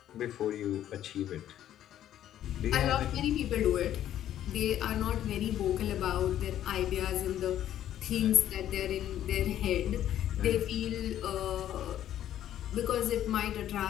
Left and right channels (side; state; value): right; quieter; 11.6 dB